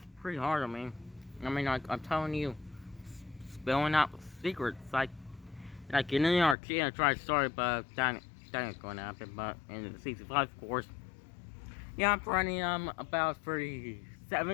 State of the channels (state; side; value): drops out; right; at 6.6 s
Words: pretty hard. I mean, like I'm telling you, spilling out secrets, like in the arcade, I tried to start, but that ain't going to happen. But in the season 5, of course, yeah, I'm running about